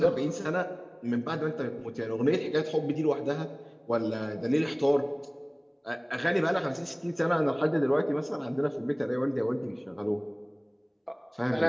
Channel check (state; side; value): identical; both; correlation 1.00